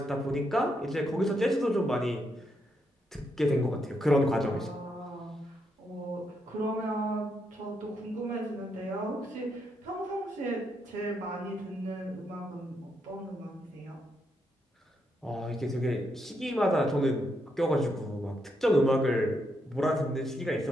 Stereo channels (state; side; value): normal; both; correlation 0.79